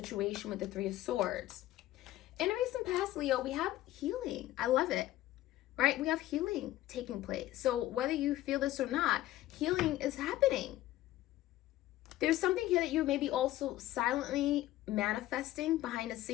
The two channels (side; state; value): right; quieter; 15.1 dB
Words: with the Three of Swords. In a recent past, Leo, we have healing. I love it, right? We have healing taking place. So whether you feel this or not, healing is happening. There's something here that you may be also silently manifesting behind the